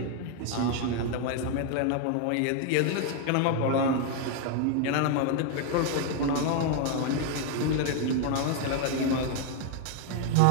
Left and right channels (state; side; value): different; both; correlation 0.01